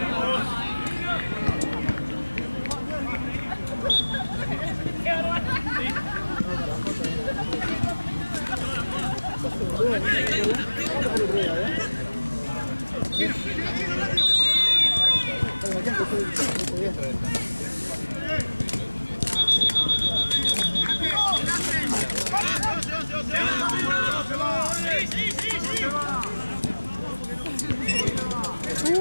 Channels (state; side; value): inverted; both; correlation -1.00